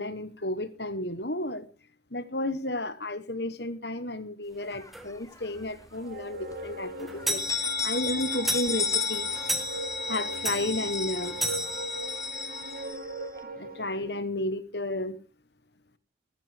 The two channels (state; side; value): normal; both; correlation 0.15